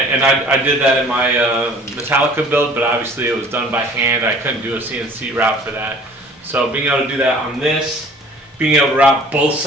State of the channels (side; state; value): both; normal; correlation 0.50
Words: I did that in my Metallica build, but obviously it was done by hand. I couldn't do a CNC route for that. So being able to do that on this, being able to route both